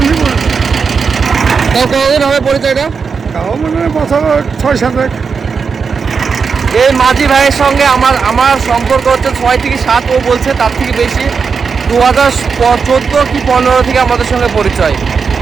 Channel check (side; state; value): left; quieter; 5.6 dB